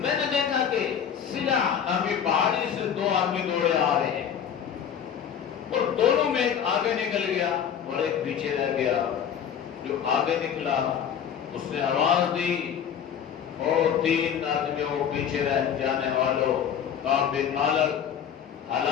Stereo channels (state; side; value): quieter; right; 8.4 dB